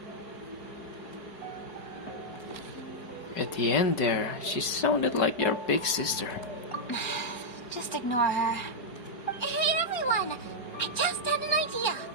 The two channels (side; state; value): right; late; 4.7 ms